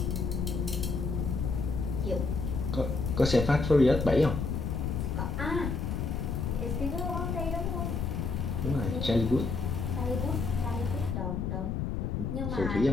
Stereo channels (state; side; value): noise; left; rumble, 1 dB below the sound